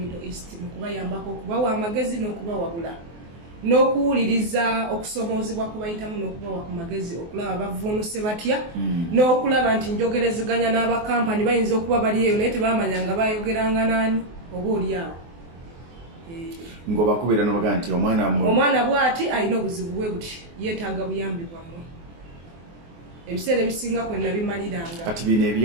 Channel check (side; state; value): left; late; 24 ms